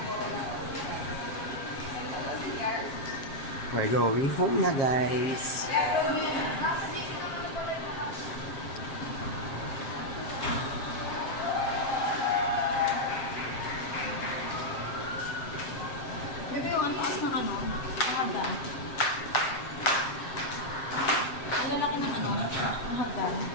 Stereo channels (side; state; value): right; late; 7.4 ms